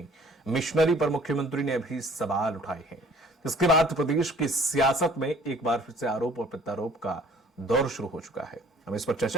मिशनरी पर मुख्यमंत्री ने अभी सवाल उठाए हैं। इसके बाद प्रदेश की सियासत में एक बार फिर से आरोप और प्रत्यारोप का दौर शुरू हो चुका है। हम इस पर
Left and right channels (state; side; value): normal; both; correlation 0.53